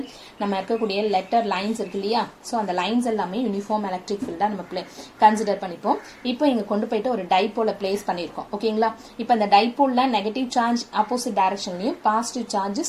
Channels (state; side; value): identical; both; correlation 1.00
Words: நம்ம இருக்கக்கூடிய லெட்டர் லைன்ஸ் இருக்கு இல்லையா? ஸோ அந்த லைன்ஸ் எல்லாமே யூனிஃபார்ம் எலக்ட்ரிக் ஃபீல்டாக நம்ம கன்சிடர் பண்ணிப்போம். இப்போ இங்கே கொண்டு போயிட்டு ஒரு டைப்போலை பிளேஸ் பண்ணியிருக்கோம், ஓகேங்களா? இப்போ அந்த டைப்போலில் நெகட்டிவ் சார்ஜ் ஆப்போசிட் டைரக்ஷன்லையும் பாசிட்டிவ் சார்ஜ்